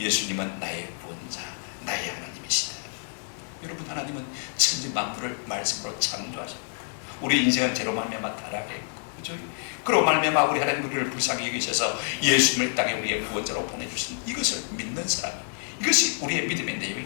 나의 구원자, 나의 하나님이시다. 여러분 하나님은 천지 만물을 말씀으로 창조하셨고 우리 인생은 죄로 말미암아 타락했고 그죠? 그로 말미암아 우리 하나님 우리를 불쌍히 여기셔서 예수님을 땅에 우리의 구원자로 보내주신 이것을 믿는 사람, 이것이 우리의 믿음의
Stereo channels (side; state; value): right; silent; 60 dB below the other